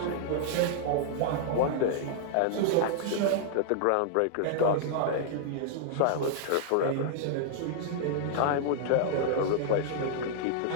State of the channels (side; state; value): both; different; correlation -0.01